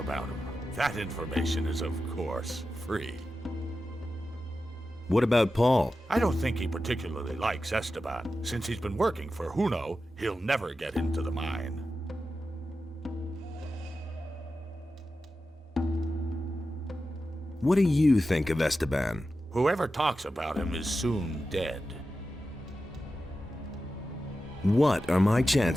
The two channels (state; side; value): normal; both; correlation 0.92